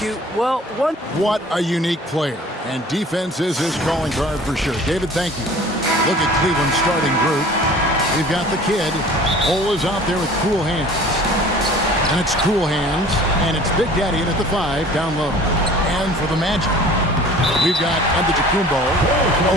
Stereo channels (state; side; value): normal; both; correlation 0.46